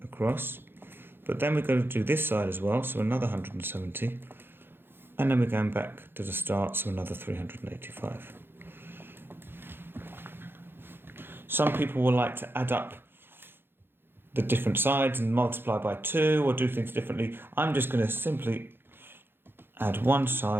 across. But then we're going to do this side as well, so another 170. And then we're going back to the start, so another 385. Some people will like to add up the different sides and multiply by 2 or do things differently. I'm just going to simply add one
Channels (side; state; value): left; late; 0.10 ms